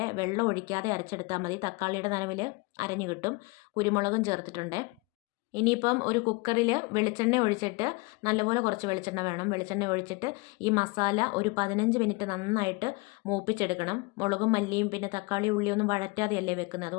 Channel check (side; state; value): right; quieter; 27.1 dB